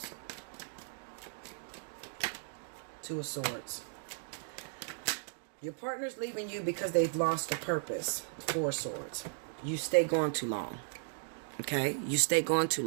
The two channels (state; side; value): silent; left; digital silence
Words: Two of Swords. Your partner's leaving you because they've lost a purpose. Four of Swords. You stay gone too long. Okay? You stay gone too